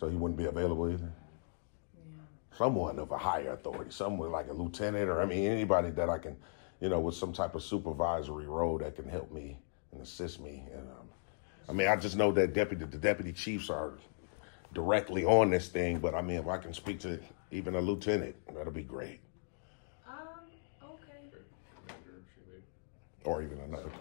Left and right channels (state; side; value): silent; right; digital silence